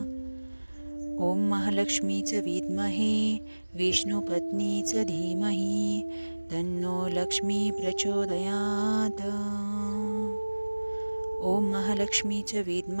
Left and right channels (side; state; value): both; inverted; correlation -1.00